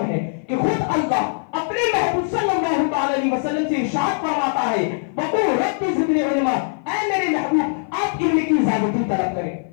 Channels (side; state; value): right; silent; 56 dB below the other